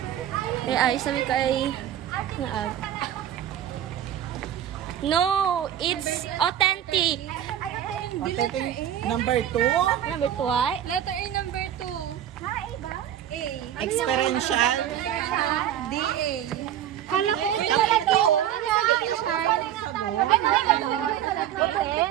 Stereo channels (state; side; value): quieter; left; 10.9 dB